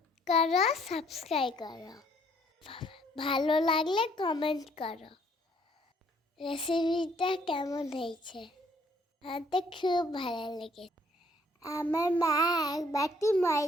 করো, সাবস্ক্রাইব করো, ভালো লাগলে কমেন্ট করো। রেসিপিটা কেমন হয়েছে? আমার খুব ভালো লেগেছে। আমার মা এক বাটি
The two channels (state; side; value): normal; both; correlation 0.64